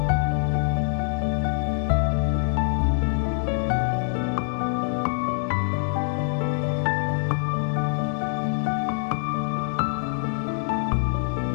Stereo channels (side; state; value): right; silent; 58 dB below the other